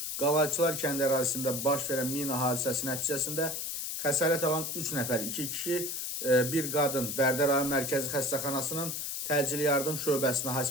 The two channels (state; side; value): noise; left; hiss, 3 dB below the sound